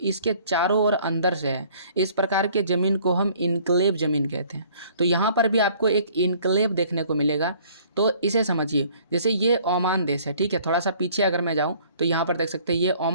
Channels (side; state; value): both; inverted; correlation -0.56